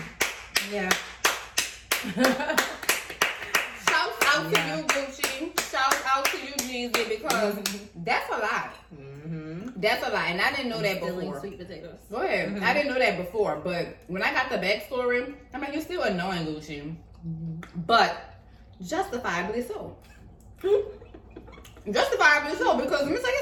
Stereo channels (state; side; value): identical; both; correlation 1.00